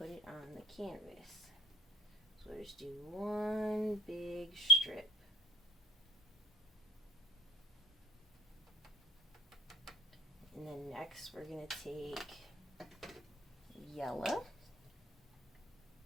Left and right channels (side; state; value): both; normal; correlation 0.47